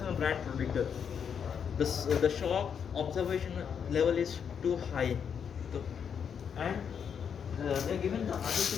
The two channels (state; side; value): quieter; right; 7.4 dB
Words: brand protector. The shock observation level is too high, so, and they are given the